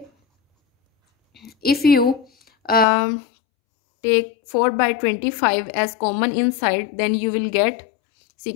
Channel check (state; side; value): drops out; right; at 2.9 s